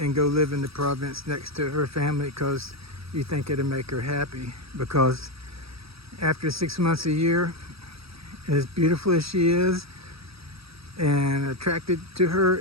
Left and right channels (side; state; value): left; late; 0.77 ms